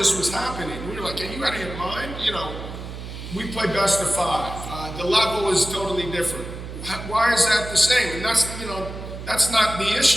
was happening. We were like, are you out of your mind? You know, we play best of 5. The level is totally different. Why is that the same? And that's, you know, that's not the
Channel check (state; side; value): noise; right; hum, 9 dB below the sound